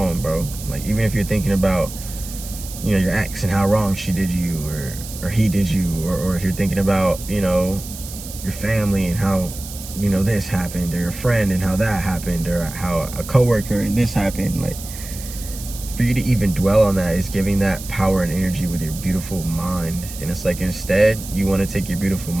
bro. Like, even if you're thinking about, you know, your ex and how wrong she did you, or he did you, or if you're thinking about, you know, your family and how, you know, this happened, or your friend and how that happened, or how a coworker and this happened. Like, for you to even dwell on that is giving that power and energy with your beautiful mind. And it's like, instead, you want to take your beautiful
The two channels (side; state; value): right; noise; hiss, 12 dB below the sound